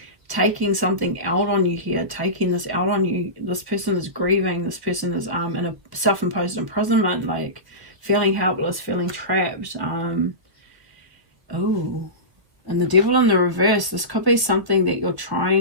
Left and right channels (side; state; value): left; late; 1.2 ms